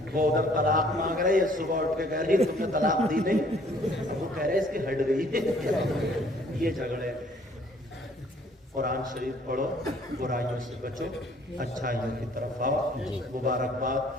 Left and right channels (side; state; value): both; normal; correlation 0.59